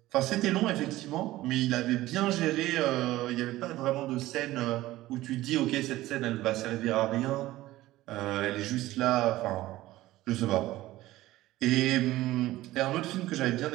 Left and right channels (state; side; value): quieter; left; 16.6 dB